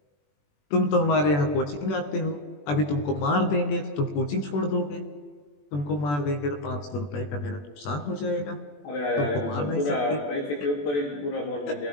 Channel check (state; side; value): late; right; 21 ms